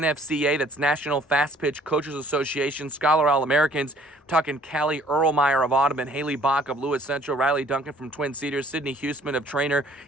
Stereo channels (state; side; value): normal; both; correlation 0.57